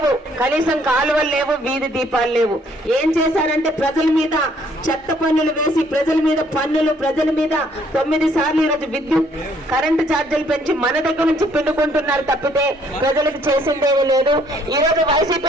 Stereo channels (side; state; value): both; normal; correlation 0.64